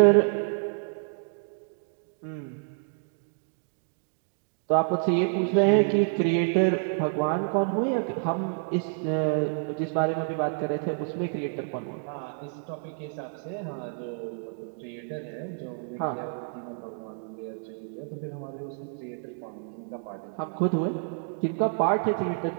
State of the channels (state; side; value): silent; left; 59 dB below the other